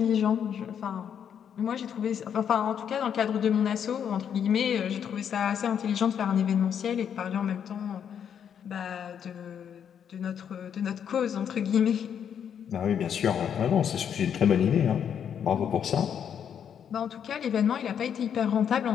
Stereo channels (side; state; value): right; quieter; 8.3 dB